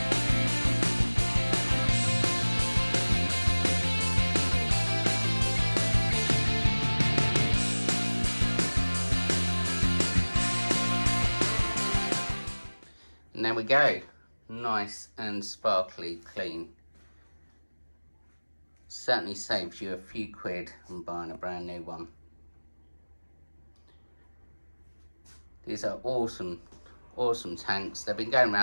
And there we go. Nice and sparkly clean. Certainly saves you a few quid on buying a brand new one. These are awesome tanks. They've been going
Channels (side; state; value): both; inverted; correlation -1.00